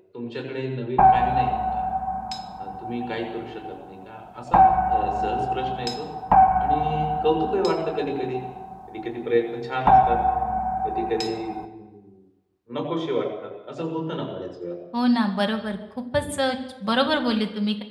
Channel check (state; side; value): identical; both; correlation 1.00